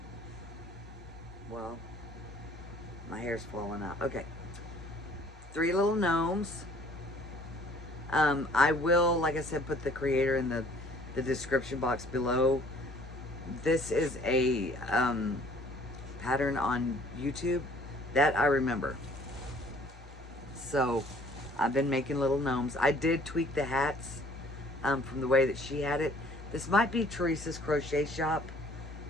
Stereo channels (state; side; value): normal; both; correlation 0.56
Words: Well, my hair's falling out. Okay. 3 little gnomes. I will, like I said, put the creator in the description box below. This is a pattern on YouTube that I remember. So I've been making little gnomes. I did tweak the hats from the way that she had it. This might be Teresa's crochet shop.